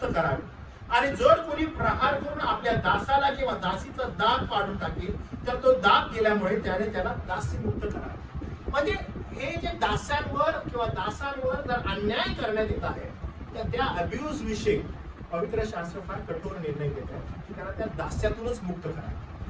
करावे, आणि जर कोणी प्रहार करून आपल्या दासाला किंवा दासीचा दाग पाडून टाकेल तर तो दाग गेल्यामुळे त्याने त्याला दास्यमुक्त करावे. म्हणजे हे जे दास्यांवर किंवा दासांवर जर अन्याय करण्यात येत आहे तर त्या अब्यूज विषयी पवित्र शास्त्र फार कठोर निर्णय घेत आहे की त्यांना त्या दास्यातूनच मुक्त करा.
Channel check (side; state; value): both; identical; correlation 1.00